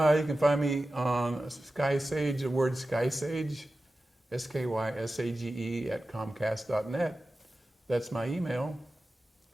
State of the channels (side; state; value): both; normal; correlation 0.94